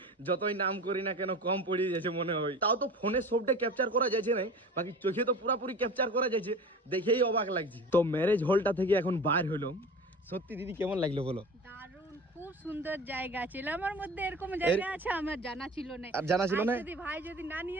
যতই নাম করি না কেন কম পড়ে যাচ্ছে মনে হয়। তাও তো ফোনে সবটা ক্যাপচার করা যাচ্ছে না, বাকি চোখে তো পুরাপুরি ক্যাপচার করা যাচ্ছে, দেখেই অবাক লাগছে। তো ম্যারেজ হলটা থেকে এখন বার হলাম, সত্যি দিদি কেমন লাগলো বলো? দারুণ, খুব সুন্দর জায়গা ছিল। আমার মধ্যে এরকম জায়গা আছে আমার জানা ছিল না। আর জানা ছিল না? যদি ভাই যদি না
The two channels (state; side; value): normal; both; correlation 0.37